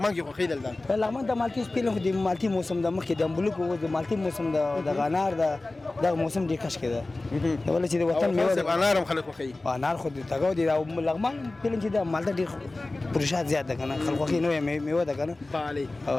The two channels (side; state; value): right; quieter; 3.0 dB